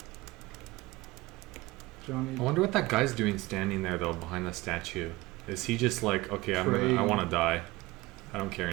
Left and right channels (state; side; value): quieter; left; 20.1 dB